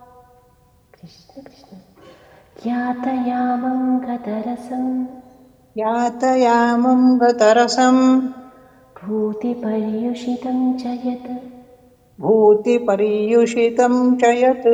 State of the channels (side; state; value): both; identical; correlation 1.00